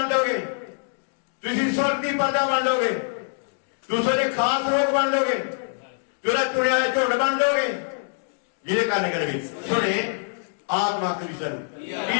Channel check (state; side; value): silent; right; digital silence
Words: ਜਾਓਗੇ, ਤੁਸੀਂ ਸਵਰਗ ਦੀ ਪ੍ਰਜਾ ਬਣ ਜਾਓਗੇ, ਤੁਸੀਂ ਦੇ ਖਾਸ ਲੋਕ ਬਣ ਜਾਓਗੇ, ਜਿਹੜਾ ਚੁਣਿਆ ਹੋਇਆ ਝੁੰਡ ਬਣ ਜਾਓਗੇ, ਜਿਹਦੇ ਕਾਰਨ ਕਰੇ ਸੁਣੇ ਆਤਮਾ ਕ੍ਰਿਸ਼ਨ